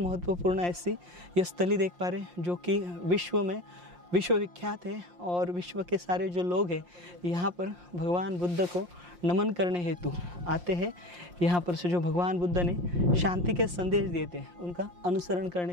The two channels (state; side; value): late; left; 5.7 ms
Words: ऐसी ये स्थली देख पा रहे हैं जो कि विश्व में विश्वविख्यात है और विश्व के सारे जो लोग हैं यहाँ पर भगवान बुद्ध को नमन करने हेतु आते हैं। यहाँ पर से जो भगवान बुद्ध ने शांति के संदेश दिए थे उनका अनुसरण